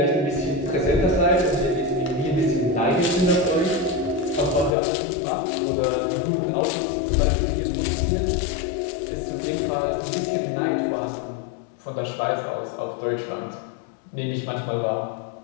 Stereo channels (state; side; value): drops out; right; at 4.8 s